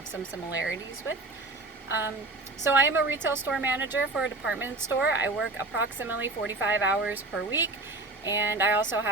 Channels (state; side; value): quieter; left; 3.0 dB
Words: some similarities with. So I am a retail store manager for a department store. I work approximately 45 hours per week. And I also